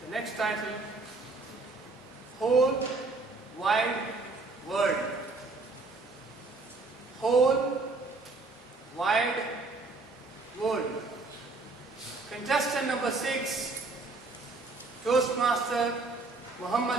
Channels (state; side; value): quieter; left; 3.6 dB